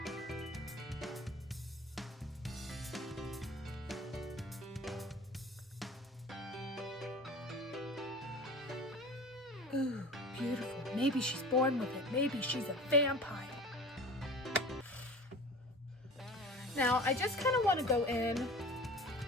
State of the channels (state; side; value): normal; both; correlation 0.39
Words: Ooh, beautiful. Maybe she's born with it. Maybe she's a vampire. Now, I just kind of want to go in